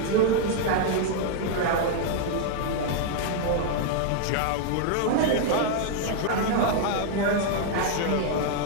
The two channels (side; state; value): both; different; correlation 0.00